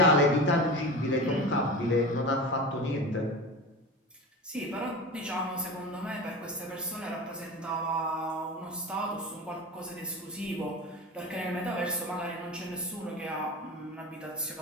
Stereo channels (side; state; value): both; normal; correlation 0.29